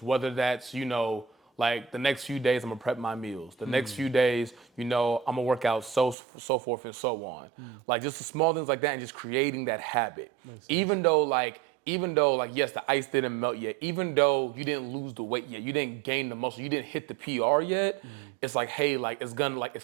whether that's, the next few days I'm gonna prep my meals. The next few days, I'm gonna work out so forth and so on. Just the small things like that and just creating that habit. Even though yes, the ice didn't melt yet, even though you didn't lose the weight yet, you didn't gain the muscle, you didn't hit the PR yet, it's hey, it's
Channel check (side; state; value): left; drops out; at 6.2 s